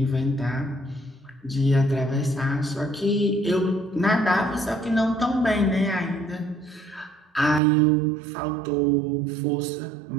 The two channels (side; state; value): left; drops out; at 7.6 s